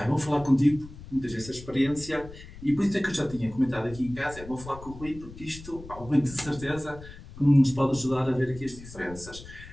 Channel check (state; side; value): noise; left; rumble, 16 dB below the sound